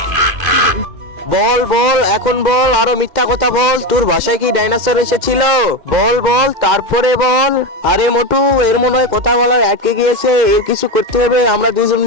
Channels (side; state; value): left; late; 2.1 ms